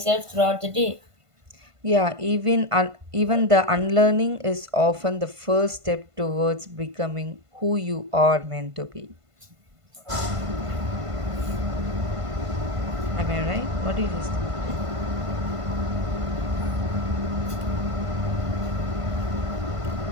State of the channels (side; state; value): left; late; 1.5 ms